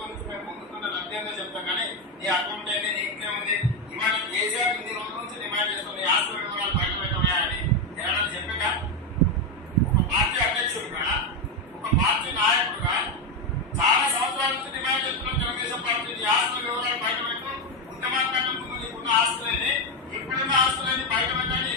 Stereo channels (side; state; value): both; normal; correlation 0.08